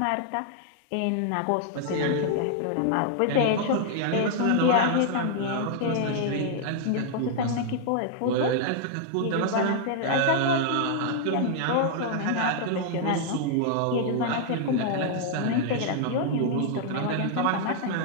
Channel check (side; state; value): both; different; correlation -0.01